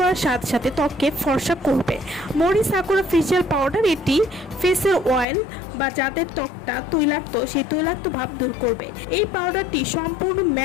সাথে সাথে ত্বককে ফর্সা করবে। মোরি সাকুরা ফেসিয়াল পাউডার এটি ফেসের অয়েল বা যাদের ত্বকটা তৈলাক্ত সেই তৈলাক্ত ভাব দূর করবে। এই পাউডারটি সম্পূর্ণ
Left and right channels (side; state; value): right; drops out; at 5.2 s